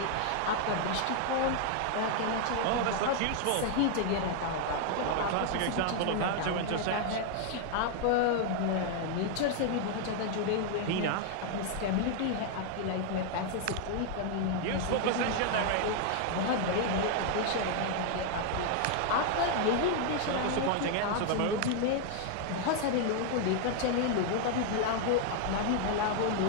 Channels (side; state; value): both; different; correlation 0.00